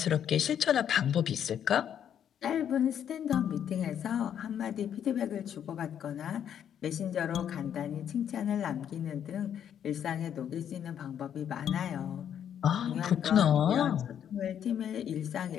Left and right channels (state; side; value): quieter; right; 9.2 dB